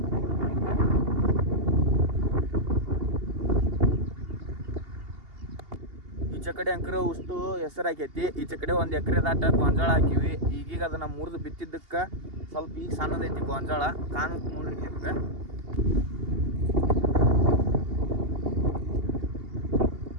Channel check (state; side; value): late; left; 2.8 ms